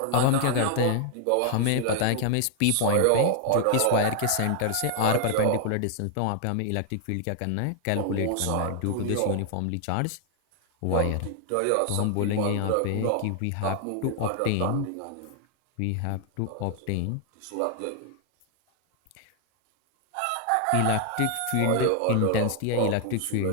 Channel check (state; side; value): different; both; correlation 0.00